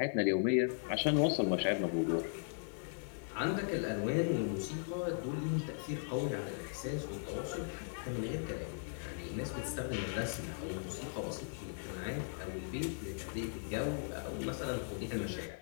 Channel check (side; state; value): right; silent; digital silence